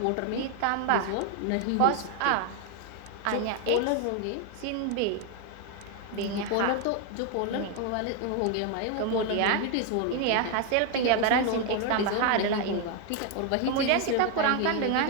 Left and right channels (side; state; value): both; different; correlation 0.01